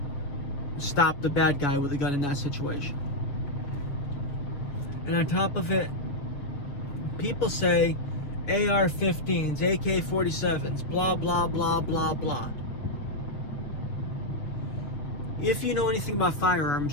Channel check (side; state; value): right; late; 7.0 ms